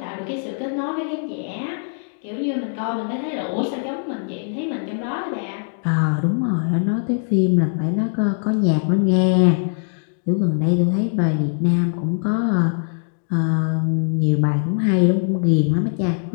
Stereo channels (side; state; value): right; silent; digital silence